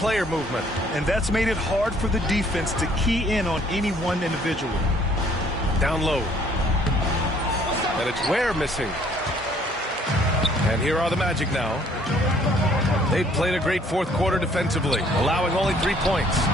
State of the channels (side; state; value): both; normal; correlation 0.61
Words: movement. And that's made it hard for the defense to key in on any one individual. Down low. And it's Ware missing. And here are the Magic now. They've played a great fourth quarter defensively, allowing only 3 points.